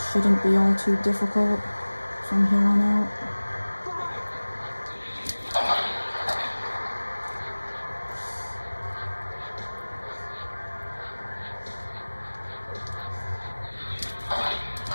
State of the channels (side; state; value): both; inverted; correlation -1.00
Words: shouldn't be all too difficult from here on out.